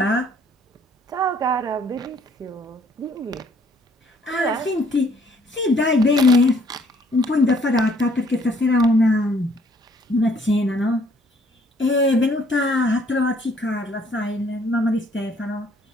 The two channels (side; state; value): both; normal; correlation 0.63